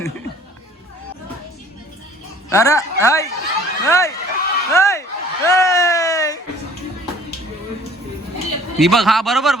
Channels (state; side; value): normal; both; correlation 0.53